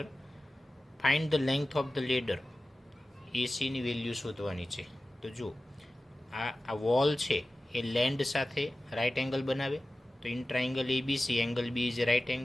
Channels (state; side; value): normal; both; correlation 0.96